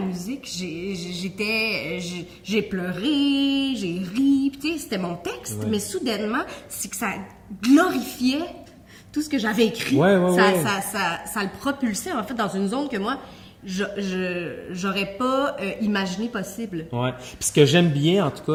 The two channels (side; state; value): both; identical; correlation 1.00